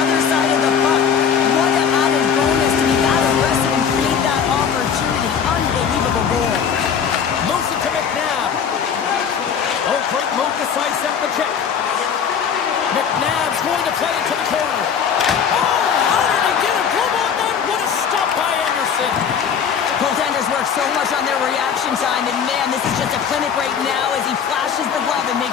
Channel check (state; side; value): quieter; right; 7.3 dB